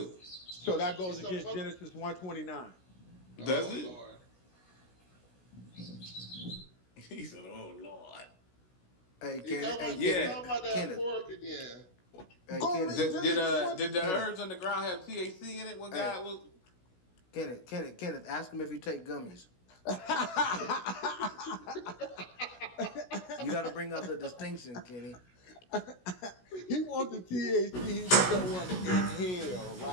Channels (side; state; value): right; late; 16 ms